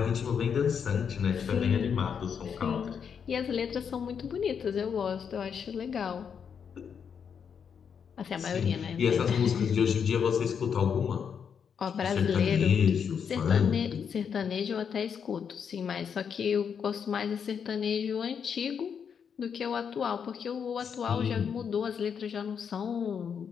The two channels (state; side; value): quieter; right; 7.1 dB